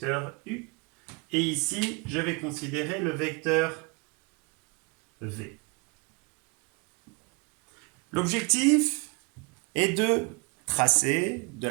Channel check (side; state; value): left; quieter; 29.2 dB